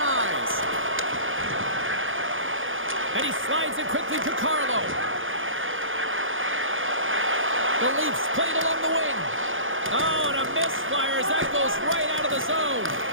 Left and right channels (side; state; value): left; late; 0.58 ms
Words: And he slides it quickly to Carlo. The Leafs played along the wing. Oh, and a misfire as that goes right out of the zone.